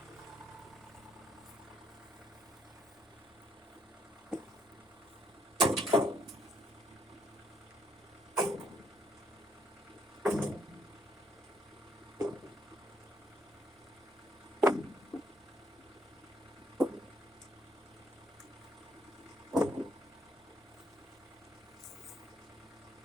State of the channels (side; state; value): both; normal; correlation 0.70